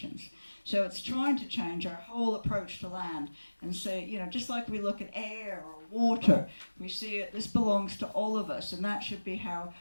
So it's trying to change our whole approach to land and say, just like we look at air or water, we see it, this belongs to all of us, and that should be how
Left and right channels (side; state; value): both; inverted; correlation -1.00